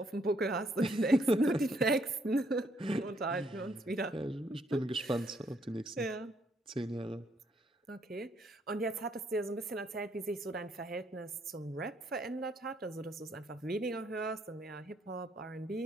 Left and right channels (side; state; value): both; normal; correlation 0.71